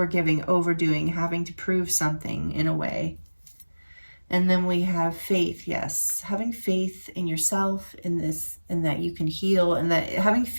overdoing, having to prove something in a way. And then we have faith. Yes, having faith in yourself, in this, and that you can heal, and that having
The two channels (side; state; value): both; inverted; correlation -1.00